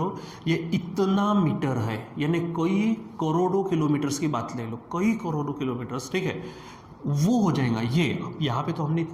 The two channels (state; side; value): identical; both; correlation 1.00